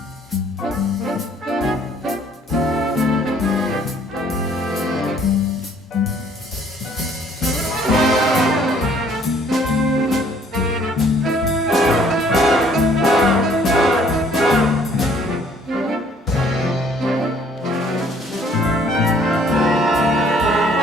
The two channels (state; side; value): normal; both; correlation 0.60